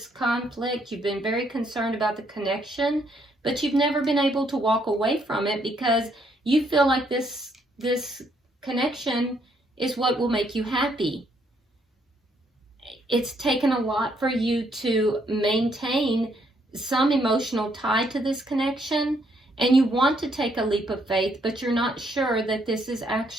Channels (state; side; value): normal; both; correlation 0.71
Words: conflict. You've been very concerned about the connection, but you've never been able to walk away from it, because you feel like this connection is what will make you happy. It's taken a lot for you to maintain some emotional tie to this connection, and you want to take a leap of faith, but you're not sure that this is